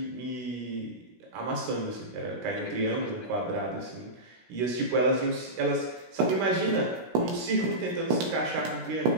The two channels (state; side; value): late; left; 17 ms